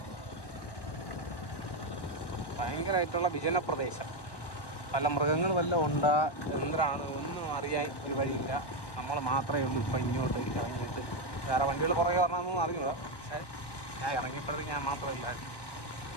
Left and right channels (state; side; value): late; right; 1.1 ms